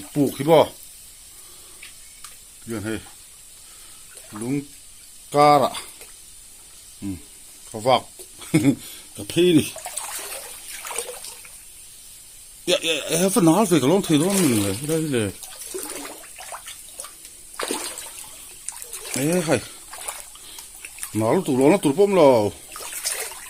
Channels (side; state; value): both; identical; correlation 1.00